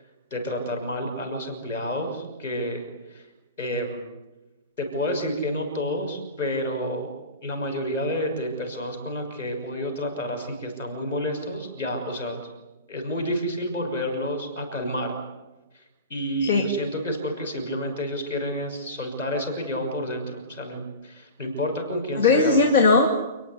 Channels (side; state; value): both; inverted; correlation -0.32